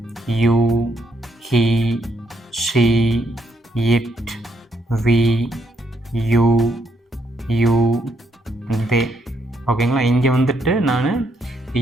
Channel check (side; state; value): both; normal; correlation 0.75